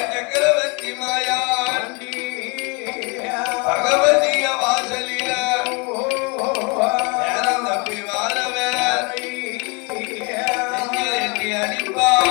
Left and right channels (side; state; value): right; quieter; 31.0 dB